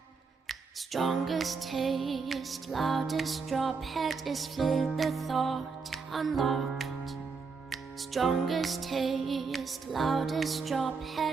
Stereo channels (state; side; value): quieter; left; 4.9 dB